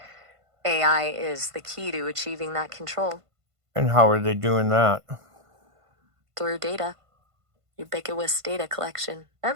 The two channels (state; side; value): late; left; 1.5 ms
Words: AI is the key to achieving that control. And how are they doing that? Through data. Ubiquitous data collection.